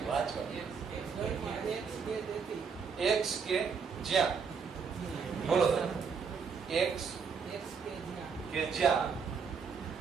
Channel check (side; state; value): left; quieter; 5.9 dB